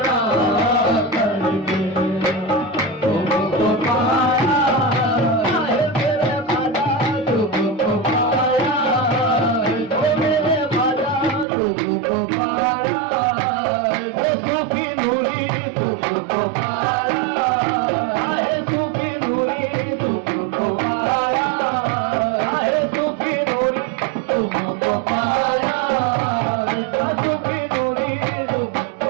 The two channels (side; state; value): left; drops out; at 11.5 s